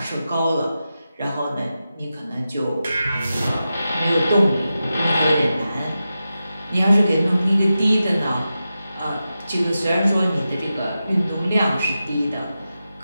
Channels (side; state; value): both; inverted; correlation -0.91